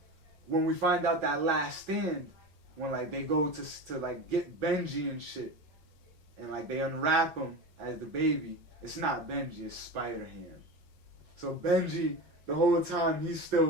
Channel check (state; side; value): late; left; 6.5 ms